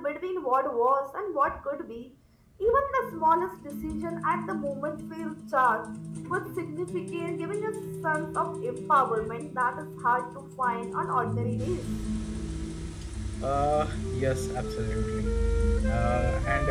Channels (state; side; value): identical; both; correlation 1.00